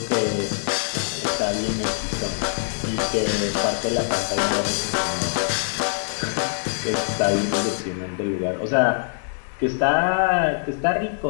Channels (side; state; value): right; silent; digital silence